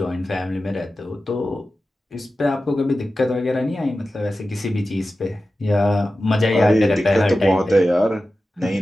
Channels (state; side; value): normal; both; correlation 0.94